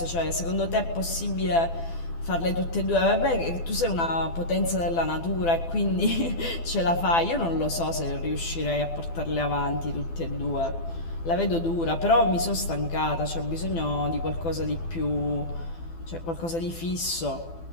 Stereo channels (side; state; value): right; late; 12 ms